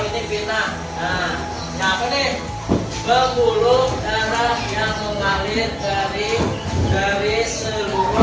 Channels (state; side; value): identical; both; correlation 1.00